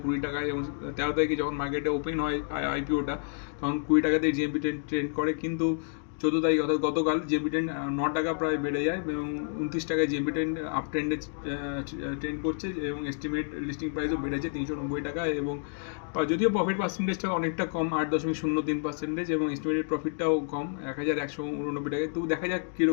20 টাকায়, এবং 13 তারিখে যখন মার্কেটে ওপেন হয় আইপিওটা তখন 20 টাকাতেই জিএমপি ট্রেন্ড করে। কিন্তু 14 তারিখ অর্থাৎ গতকাল জিএমপি ট্রেন্ড 9 টাকা প্রায় বেড়ে যায় এবং 29 টাকায় জিএমপি ট্রেন্ড আপ ট্রেন্ডে ট্রেন্ড করছে, এবং এস্টিমেট লিস্টিং প্রাইসও বেড়েছে 390 টাকা। এবং যদিও প্রফিট পার্সেন্টেজটা অনেকটা কম, 8.03%, এবং এস্টিমেটেড প্রফিটটাও কম 1189 টাকায়। তো দেখা যাক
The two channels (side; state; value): right; silent; digital silence